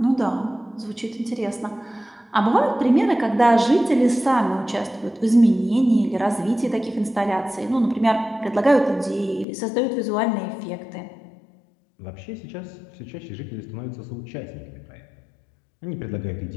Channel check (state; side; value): drops out; right; at 9.5 s